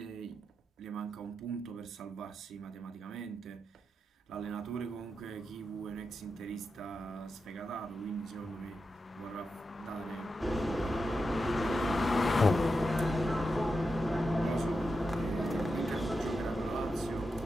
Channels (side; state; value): both; normal; correlation 0.88